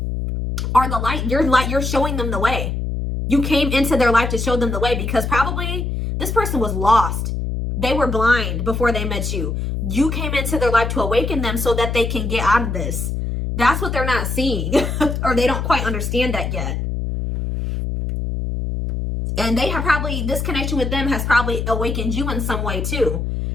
are the light. You're showing them the way. You came into their life to show them the way, because probably this person was lost. They were blind before they met you. You came into their life to awaken them so that they can get out of this. That's what they're not seeing, or they don't quite understand that yet. And they have probably, this connection with them has probably awakened you in some way too.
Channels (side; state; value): left; noise; hum, 2 dB below the sound